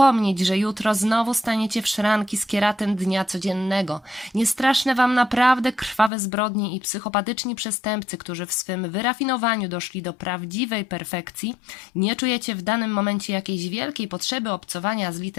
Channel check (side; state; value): right; drops out; at 6.1 s